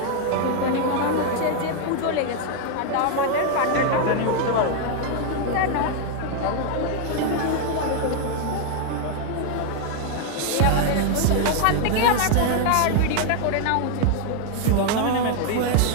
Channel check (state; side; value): different; both; correlation 0.00